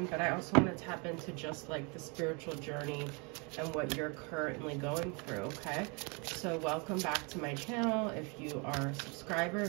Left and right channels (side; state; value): left; quieter; 32.0 dB